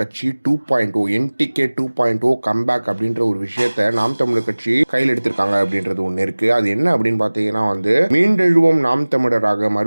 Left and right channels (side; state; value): both; inverted; correlation -1.00